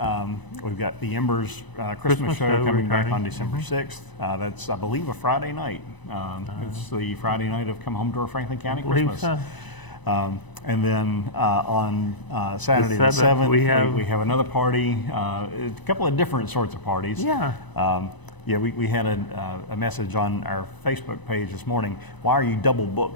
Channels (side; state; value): right; late; 1.0 ms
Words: we've got the Embers Christmas show coming back on December 6th. That's, I believe, a Friday night. It's the Friday night of Come Home to Our Franklin County Christmas. So. And then on Saturday the 7th, we have another party, a couple of different sorts of parties. We had a message on our Facebook page this morning. Why are you double